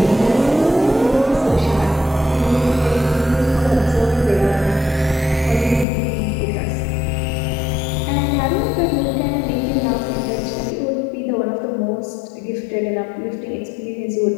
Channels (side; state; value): right; drops out; at 5.9 s